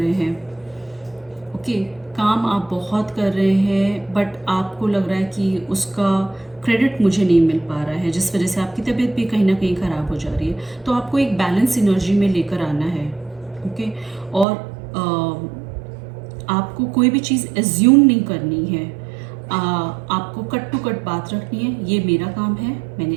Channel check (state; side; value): drops out; left; at 14.5 s